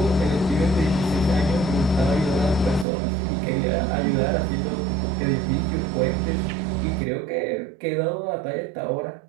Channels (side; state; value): left; drops out; at 2.9 s